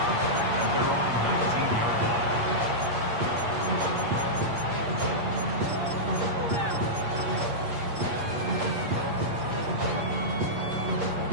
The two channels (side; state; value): left; late; 8.5 ms